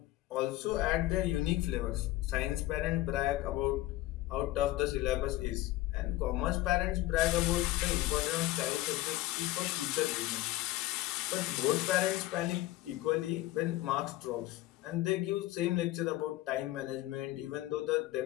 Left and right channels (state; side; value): quieter; right; 16.7 dB